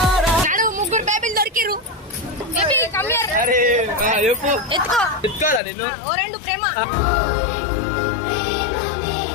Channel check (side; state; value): right; drops out; at 5.6 s